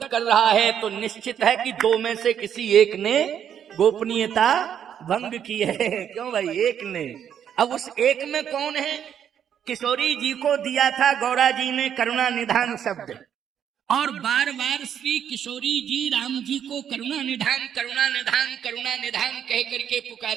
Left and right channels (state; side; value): quieter; left; 9.0 dB